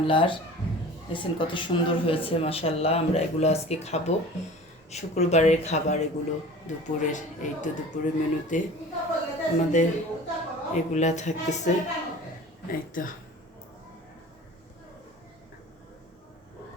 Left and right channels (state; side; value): normal; both; correlation 0.41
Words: দেখছেন কত সুন্দর হয়েছে, মাশাল্লাহ। আমরা এগুলো আজকে খাবো, শুক্রবারের খাবার এগুলো দুপুরের। এই তো দুপুরের মেনুতে আমাদের এগুলা থাকতেছে। এই তো